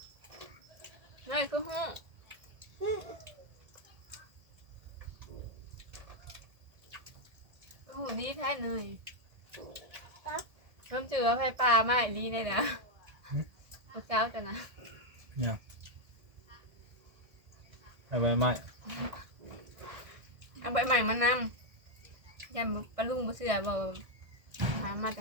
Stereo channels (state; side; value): late; left; 1.7 ms